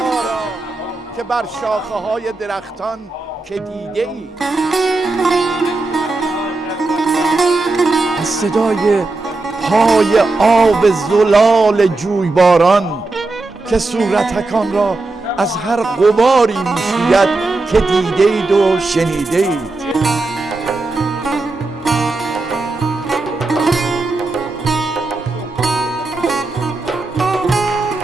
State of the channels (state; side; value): quieter; left; 3.3 dB